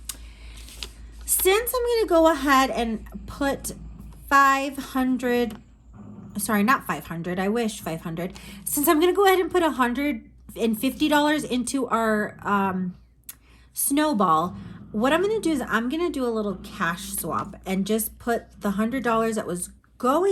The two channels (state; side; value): identical; both; correlation 1.00